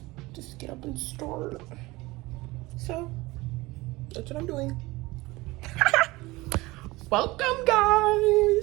just get up and start. So that's what I'm doing. Welcome,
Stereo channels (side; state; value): left; quieter; 21.1 dB